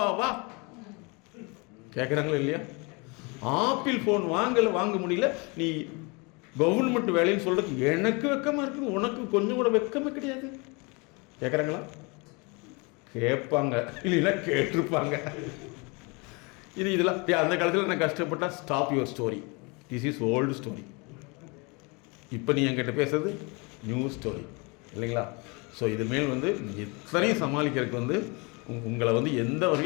கேட்குறாங்களா இல்லையா? ஆப்பிள் ஃபோன் வாங்க முடியல, நீ கவர்மெண்ட் வேலைன்னு சொல்கிறதுக்கு எனக்கு வெக்கமாக இருக்குது, உனக்கு கொஞ்சம் கூட வெக்கமே கிடையாது. கேட்குறாங்களா? கேட்பாங்க, இல்லைன்னா கேட்டிருப்பாங்க. இதெல்லாம் அந்த காலத்தில் நான் கஷ்டப்பட்டா stop your story, this is old story. இப்போ நீ என்கிட்ட பேசுறது நியூ ஸ்டோரி இல்லைங்களா? ஸோ இது மேல் வந்து எத்தனையும் சமாளிக்கிறதுக்கு வந்து உங்களை வந்து எந்த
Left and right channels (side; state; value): right; quieter; 29.5 dB